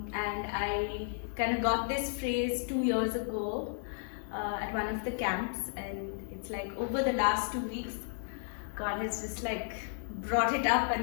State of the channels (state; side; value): silent; right; digital silence